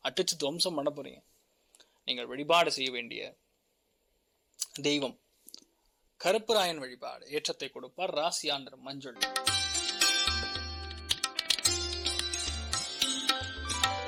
அடிச்சு துவம்சம் பண்ண போறீங்க. நீங்கள் வழிபாடு செய்ய வேண்டிய தெய்வம் கருப்புராயன் வழிபாடு ஏற்றத்தை கொடுப்பார். ராசியா நிறம் மஞ்சள்.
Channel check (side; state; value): both; identical; correlation 1.00